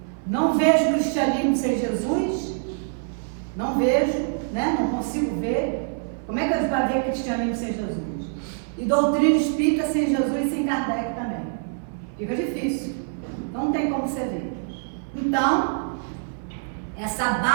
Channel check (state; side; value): silent; left; 62 dB below the other